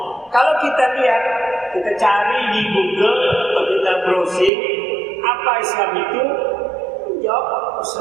Kalau kita lihat, kita cari di Google atau kita browsing apa Islam itu, jawab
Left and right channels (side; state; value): left; drops out; at 4.5 s